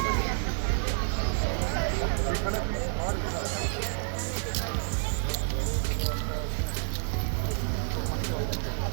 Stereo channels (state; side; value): silent; left; digital silence